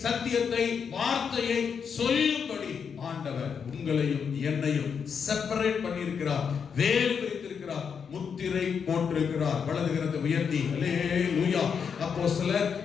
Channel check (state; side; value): quieter; right; 6.7 dB